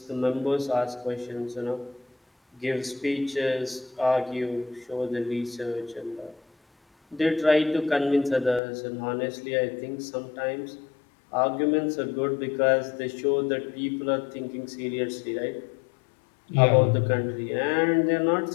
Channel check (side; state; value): right; drops out; at 8.6 s